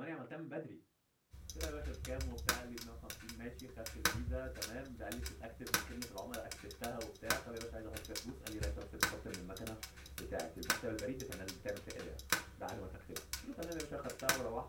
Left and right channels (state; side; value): identical; both; correlation 1.00